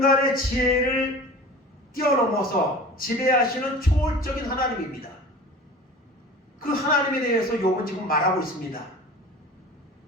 지혜를 뛰어넘어서 지배하시는 초월적인 하나님입니다. 그 하나님에 대해서 욥은 지금 말하고 있습니다.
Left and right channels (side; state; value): both; normal; correlation 0.39